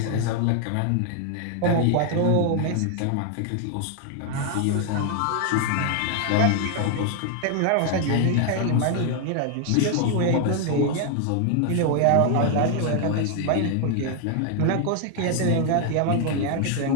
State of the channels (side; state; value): both; different; correlation 0.00